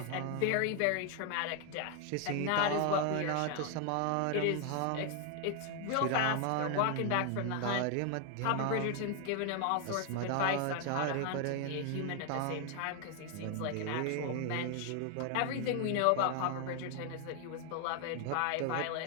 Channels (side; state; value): both; different; correlation 0.00